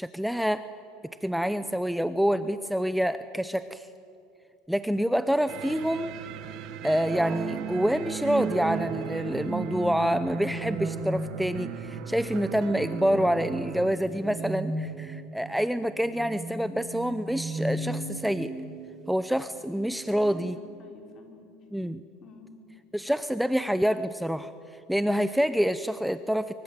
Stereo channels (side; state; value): both; normal; correlation 0.93